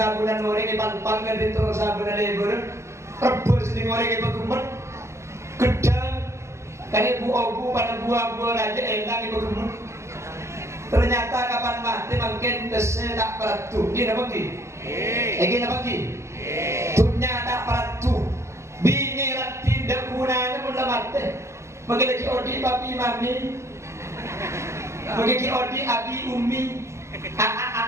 orang yang pang di terus sabun lebur rebus di orang yang berkumpul gedang kali bu pada buah aja enak ibu kumpul ternyata kapan mati makin besi tak beratu dia apa ki? Lagi apa ki? Dunia tak beratu bini tidak gunanya pun mati bagi odi papi mami bagi odi abi umi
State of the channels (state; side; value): late; left; 0.14 ms